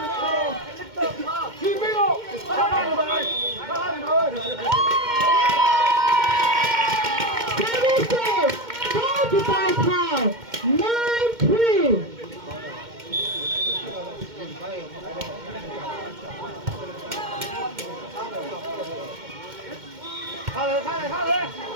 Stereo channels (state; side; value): late; left; 2.1 ms